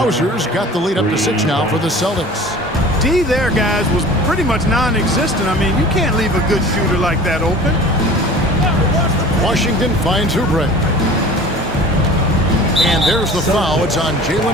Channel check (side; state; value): both; normal; correlation 0.42